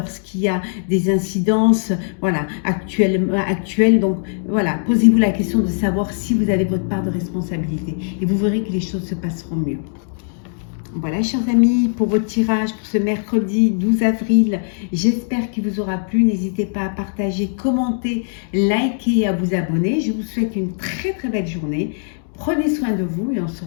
y a des incidences, voilà, actuelles. Donc, voilà, posez-vous la question de savoir si vous avez votre part de responsabilité. Et vous verrez que les choses se passeront mieux. Voilà, chers amis, pour votre tirage pour ce mercredi 12 avril, j'espère qu'il vous aura plu. N'hésitez pas à partager, commenter, liker et à vous abonner. Je vous souhaite une très très belle journée. Prenez soin de vous et on se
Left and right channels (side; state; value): right; silent; digital silence